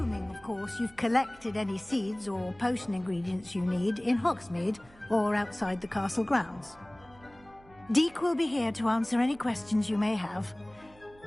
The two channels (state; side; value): noise; right; hum, 26 dB below the sound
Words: of course, you've collected any seeds or potion ingredients you need in Hogsmeade or outside the castle grounds. Deke will be here to answer any questions you may have.